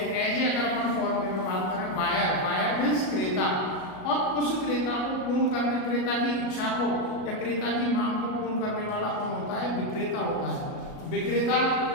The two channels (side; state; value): right; late; 38 ms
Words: ऐसे अगर अपन फॉर्म में बात करें, बायर, बायर मीन्स क्रेता, और उस क्रेता को पूर्ण करने, क्रेता की इच्छा को या क्रेता की मांग को पूर्ण करने वाला कौन होता है? विक्रेता होता है। विक्रेता,